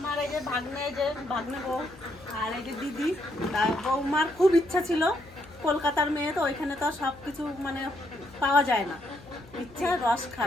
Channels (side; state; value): left; noise; hum, 22 dB below the sound